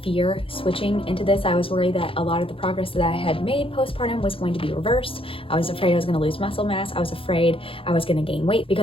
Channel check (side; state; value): right; late; 0.26 ms